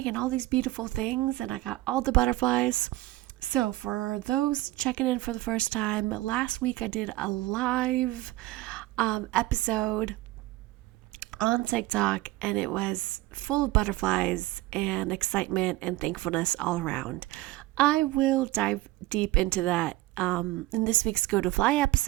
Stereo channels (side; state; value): left; quieter; 17.9 dB